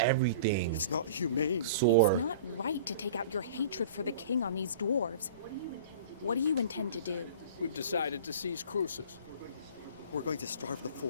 It's not humane. sore. It's not right to take out your hatred for the king on these dwarves. What do you intend to do? We've decided to seize Crucis. We're going to starve the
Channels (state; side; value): inverted; both; correlation -0.42